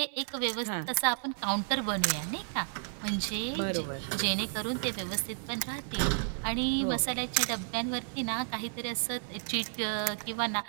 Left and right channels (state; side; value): silent; left; 56 dB below the other